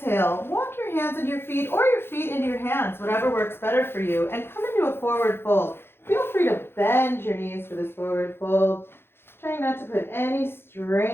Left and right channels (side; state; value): right; late; 0.11 ms